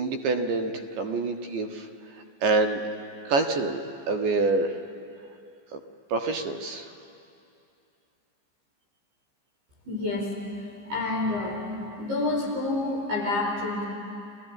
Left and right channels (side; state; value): left; late; 15 ms